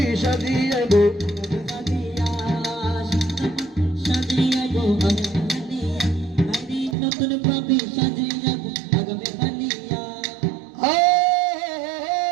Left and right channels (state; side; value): drops out; left; at 7.0 s